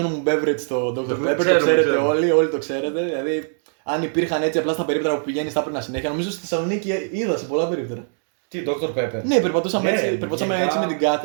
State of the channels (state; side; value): silent; left; 61 dB below the other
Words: μου beverage το Dr. Pepper, το ξέρουμε, ξέρετε ξέρουμε. όλοι το ξέρετε. Δηλαδή, αν υπήρχαν έτσι απλά στα περίπτερα που πηγαίνει, θα έπαιρνα συνέχεια. Νομίζω στη Θεσσαλονίκη είδα σε πολλά περίπτερα. Τι, Dr. Pepper. Ναι, περπατούσαμε, Ναι, περπατούσαμε γενικά. έτσι με την